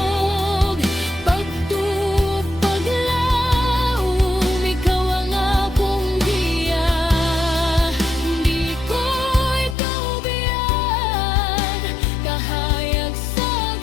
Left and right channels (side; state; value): right; drops out; at 9.8 s